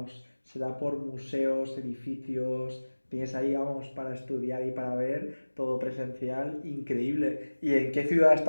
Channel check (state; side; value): inverted; both; correlation -1.00